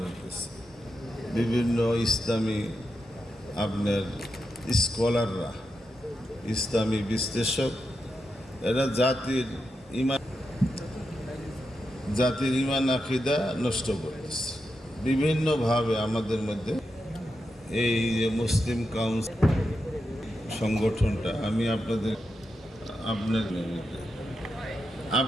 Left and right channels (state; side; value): normal; both; correlation 0.87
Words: হতেছে বিভিন্ন ইসলামী আপনার স্কলাররা, ইসলামী বিশ্লেষক, এরা জাতির ইমান আকিদা নষ্ট করতেছে বিভিন্নভাবে। আমাদের মধ্যে এই যে মুসলিম কাউন্সিল সংগঠনটা, আমি